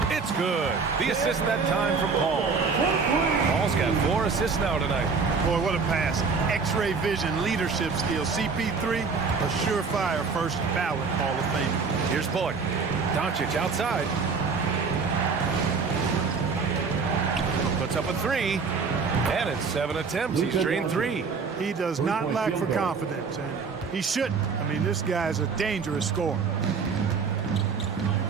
It's good. The assist that time from Paul. Paul's got 4 assists now tonight. Boy, what a pass. X-ray vision, leadership skills. CP3, a surefire first ballot Hall of Fame. Here's Bullock. Doncic outside. Puts up a 3. And it's 7 attempts. He's drained 3. He does not lack for confidence, and he shouldn't. I mean, this guy's a dangerous scorer.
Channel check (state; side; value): quieter; left; 5.1 dB